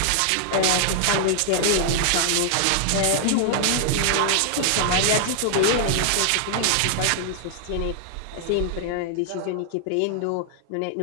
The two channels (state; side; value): different; both; correlation 0.00